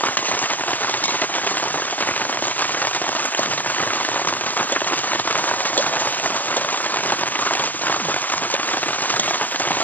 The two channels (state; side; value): late; right; 0.083 ms